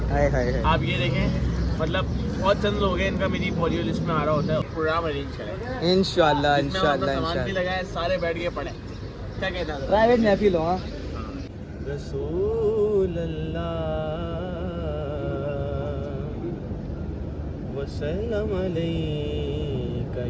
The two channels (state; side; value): identical; both; correlation 1.00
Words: हाय हाय हाय। आप ये देखें, मतलब बहुत चंद लोग हैं इनका मेरी फॉर लिस्ट में आ रहा होता है। प्रोग्राम अरेंज करें इंशाल्लाह जिसमें हम अपना सामान भी इंशाल्लाह लगाए, सारे बैठ के पढ़े। क्या कहता है? प्राइवेट महफिल हो। हाँ रसूल अल्लाह वसल्लम अलैका